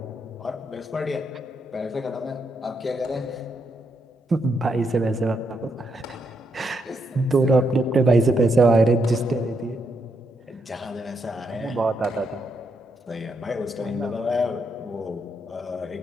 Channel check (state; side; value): normal; both; correlation 0.79